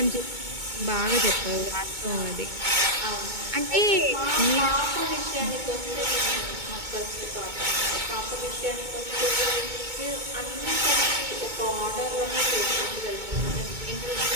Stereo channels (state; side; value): late; left; 2.2 ms